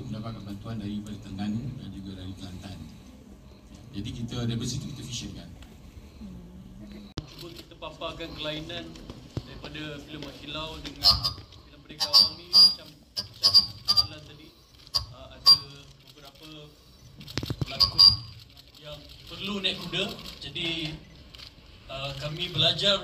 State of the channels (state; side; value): identical; both; correlation 1.00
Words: mendapatkan bantuan daripada Terengganu dan juga dari Kelantan. Jadi kita dari situ kita visionkan. Cuba kita paparkan kelainan daripada filem Mak Kilau dengan filem Merdeka Rawang ni macam malam tadi ada beberapa pelakon yang perlu naik kuda. Jadi kami